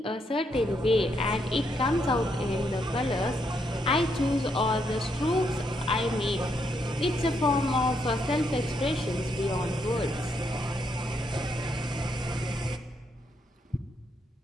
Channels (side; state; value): both; normal; correlation 0.77